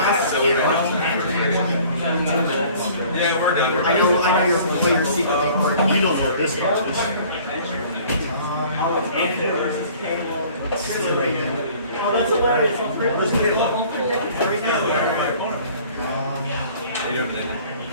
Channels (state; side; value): inverted; both; correlation -0.51